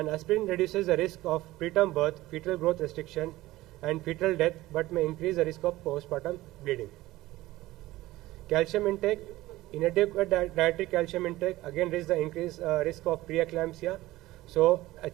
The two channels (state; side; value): quieter; left; 17.5 dB